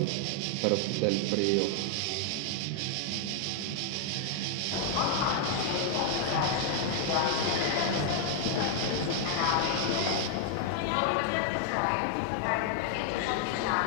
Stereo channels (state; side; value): different; both; correlation 0.00